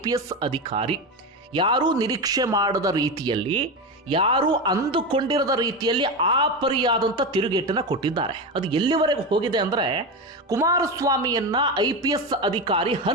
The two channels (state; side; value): normal; both; correlation 0.17